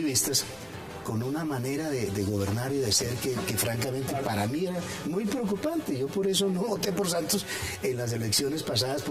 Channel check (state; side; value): identical; both; correlation 1.00